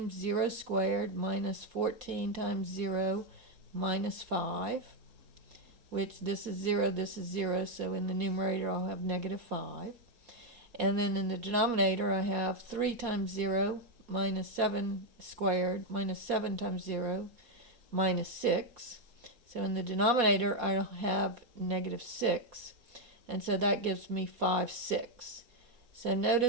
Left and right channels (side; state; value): left; late; 4.1 ms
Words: 0 squared minus 14 times 0 minus 5, which this is 0, so in the numerator I'll have negative 5. And then in the denominator I have 3 times 0 minus 7 squared minus 7 times 0 minus 6. So in the denominator I'll have negative 6, and so that gives me 5, 6. So